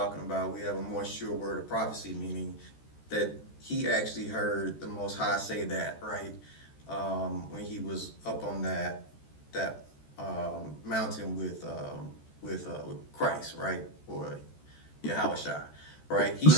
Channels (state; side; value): late; right; 14 ms